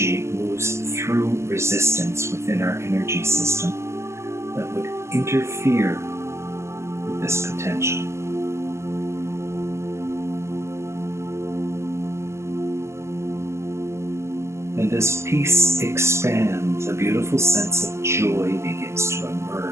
moves through resistance within our energy system that would interfere with this potential. And as peace expands, a beautiful sense of joy begins to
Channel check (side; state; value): left; late; 0.13 ms